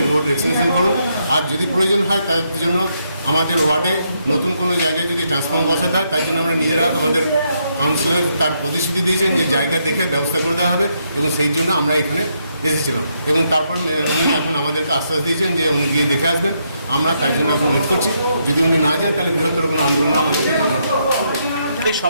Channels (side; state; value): both; inverted; correlation -0.77